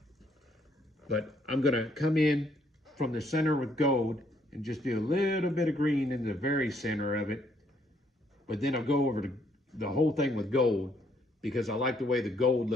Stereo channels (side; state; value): both; normal; correlation 0.69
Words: but I'm gonna come in from the center with gold and just do a little bit of green in the very center of it, but then I'll go over the whole thing with gold because I like the way the gold